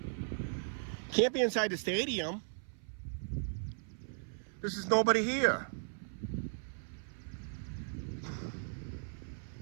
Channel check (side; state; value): left; silent; 53 dB below the other